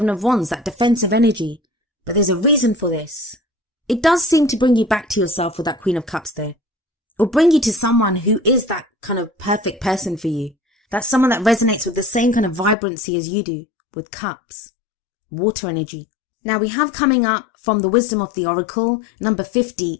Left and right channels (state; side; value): drops out; right; at 12.8 s